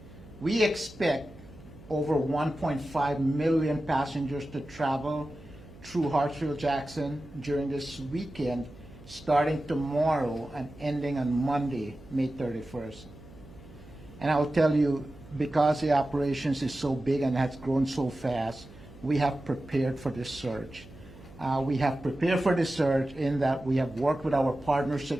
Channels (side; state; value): right; noise; hum, 20 dB below the sound